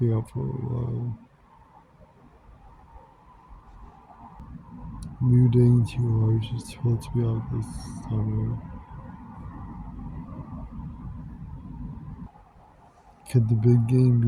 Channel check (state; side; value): identical; both; correlation 1.00